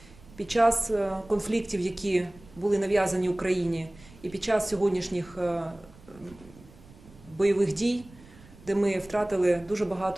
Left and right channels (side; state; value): right; noise; rumble, 23 dB below the sound